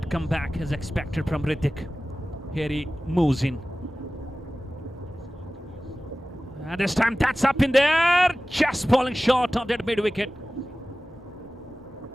comeback as expected from Hrithik. Here he moves in. And this time that's up in there, just falling short of that mid wicket.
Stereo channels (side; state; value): both; normal; correlation 0.96